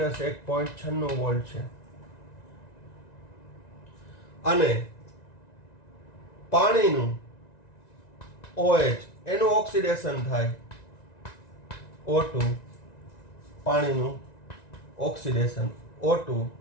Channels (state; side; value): late; right; 1.9 ms